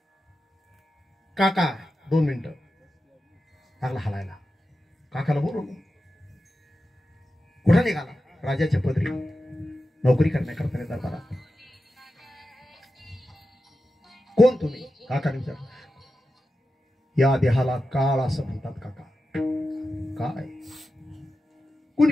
काका 2 मिनिटं लागला हलायला. काकाला बोलवलं. कुठं निघाला? राजाच्या पदरी नोकरी करण्याकरता दरबारात. कोण तुम्ही? काकाने विचारलं. या देहाला काळ असं म्हणतात काका. काय?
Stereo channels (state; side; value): normal; both; correlation 0.91